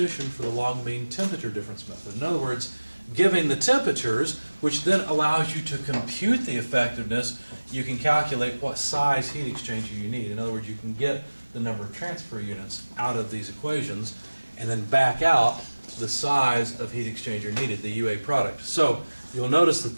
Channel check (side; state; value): both; inverted; correlation -1.00